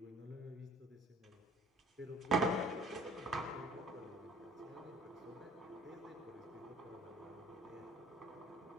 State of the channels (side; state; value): both; normal; correlation 0.52